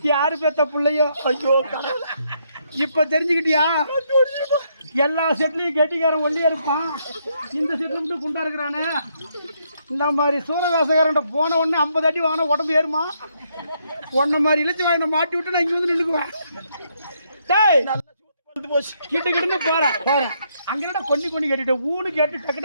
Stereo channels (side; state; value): both; inverted; correlation -0.74